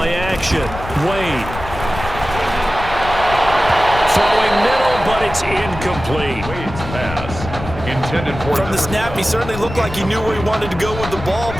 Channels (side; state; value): left; noise; rumble, 10 dB below the sound